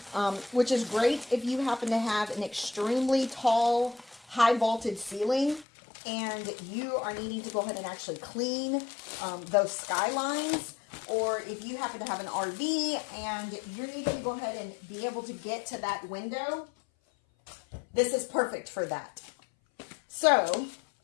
which is great if you happen to have an extremely tall, high vaulted ceiling and you are needing to go ahead and actually clean those skylines, or if you happen to have an RV and you're needing to go ahead and be able to get to that window. This is perfect for that. So,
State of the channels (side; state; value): right; drops out; at 5.7 s